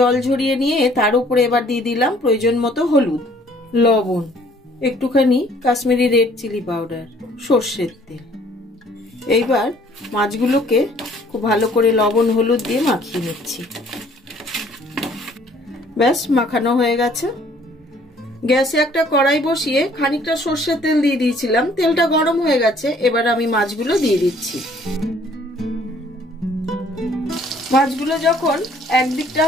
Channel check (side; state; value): both; normal; correlation 0.59